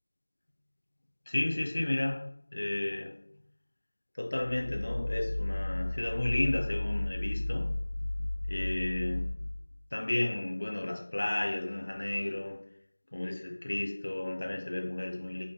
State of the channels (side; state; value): both; inverted; correlation -1.00